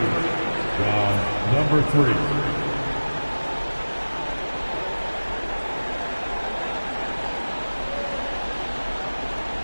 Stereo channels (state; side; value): inverted; both; correlation -1.00